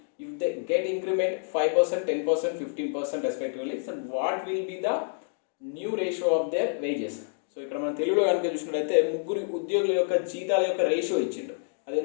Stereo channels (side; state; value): right; silent; digital silence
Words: If they get increment 5%, 10%, 15% respectively, so what will be the new ratio of their wages? So ఇక్కడ మనం తెలుగులో కనుక చూసినట్లయితే ముగ్గురు ఉద్యోగుల యొక్క జీతాల యొక్క రేషియో ఇచ్చిండు. అది